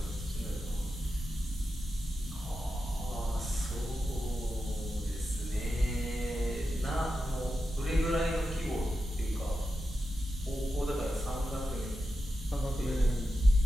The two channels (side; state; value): both; normal; correlation 0.90